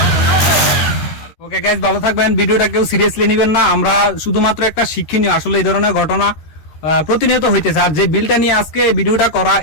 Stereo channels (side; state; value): right; late; 13 ms